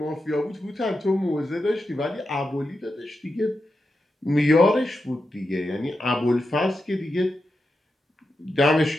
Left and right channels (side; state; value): both; normal; correlation 0.88